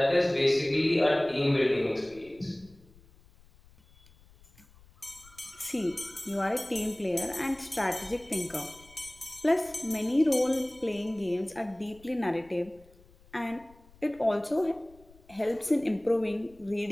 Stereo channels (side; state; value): left; noise; rumble, 26 dB below the sound